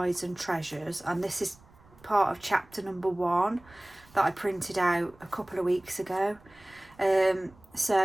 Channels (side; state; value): right; noise; rumble, 27 dB below the sound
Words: and Treasures. And this is part of chapter number 1 that I printed out a couple of weeks ago.